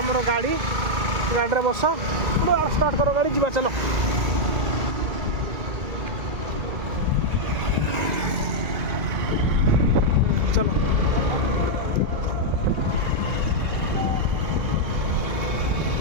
गाड़ी गाड़ी बस स्टार्ट करो गाड़ी जा चलो। चलो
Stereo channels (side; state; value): left; late; 2.1 ms